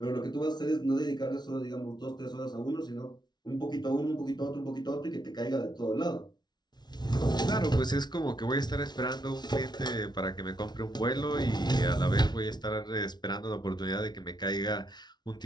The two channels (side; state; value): right; late; 0.20 ms